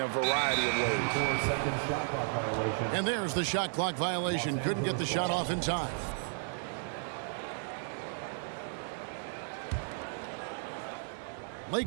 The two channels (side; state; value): left; silent; digital silence